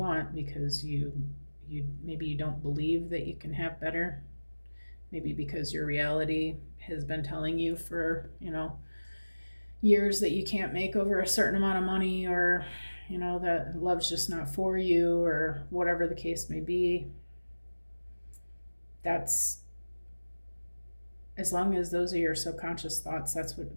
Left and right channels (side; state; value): both; inverted; correlation -1.00